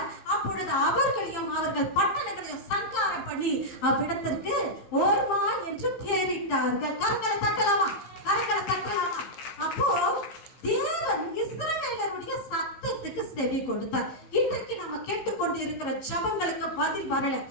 அப்பொழுது அவர்களையும் அவர்கள் பட்டணங்களையும் சங்காரம் பண்ணி அவ்விடத்திற்கு ஓர்மா என்று பெயரிட்டார்கள். கரங்களை தட்டலாமா? அப்போ தேவன் இஸ்ரவேலருடைய சத்தத்துக்கு செவி கொடுத்தார். இன்றைக்கு நம்ம கேட்டுக்கொண்டு இருக்கிற ஜெபங்களுக்கு பதில் வரல.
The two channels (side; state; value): right; late; 15 ms